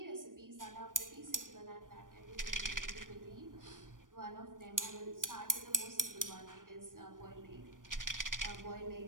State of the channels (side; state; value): left; late; 0.89 ms